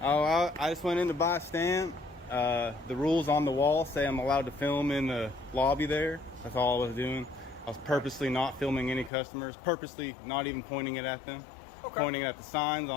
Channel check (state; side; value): drops out; right; at 9.1 s